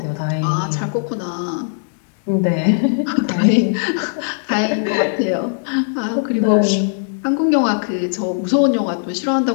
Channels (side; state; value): right; silent; 65 dB below the other